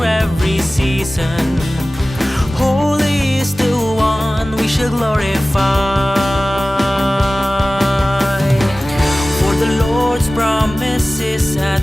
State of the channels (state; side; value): normal; both; correlation 0.97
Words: every season. Holy is the one we shall glorify. For the Lord's promise is at